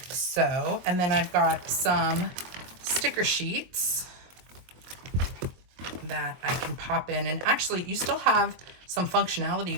so. And then I've got some sticker sheets that I can pop in. And actually you still have some functionality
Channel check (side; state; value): left; late; 22 ms